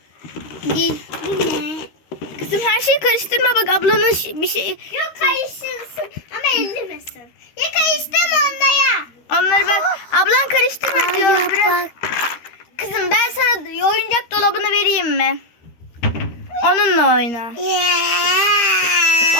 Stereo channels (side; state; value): right; late; 13 ms